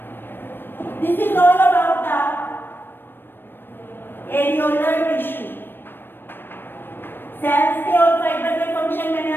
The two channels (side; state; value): right; late; 0.098 ms